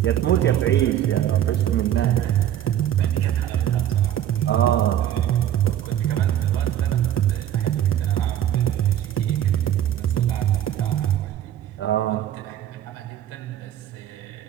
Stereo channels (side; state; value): left; quieter; 11.4 dB